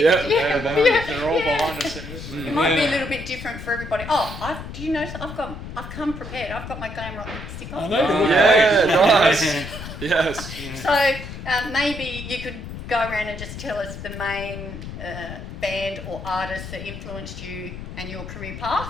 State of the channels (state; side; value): noise; left; rumble, 10 dB below the sound